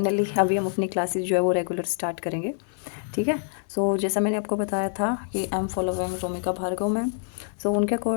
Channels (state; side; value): silent; right; 61 dB below the other